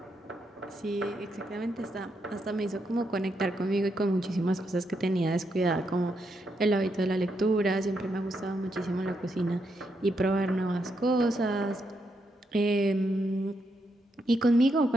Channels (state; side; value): normal; both; correlation 0.80